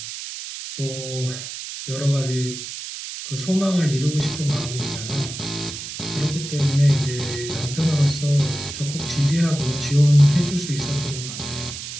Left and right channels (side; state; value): right; noise; hiss, 9 dB below the sound